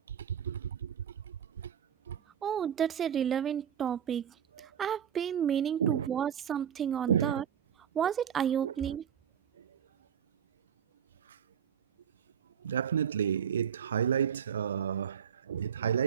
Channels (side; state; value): left; quieter; 8.4 dB